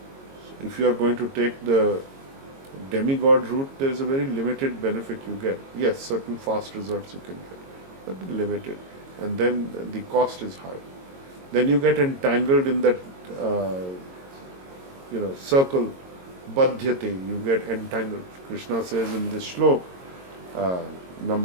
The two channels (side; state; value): left; late; 22 ms